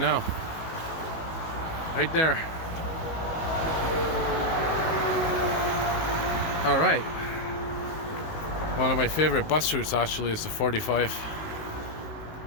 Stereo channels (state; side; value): late; right; 19 ms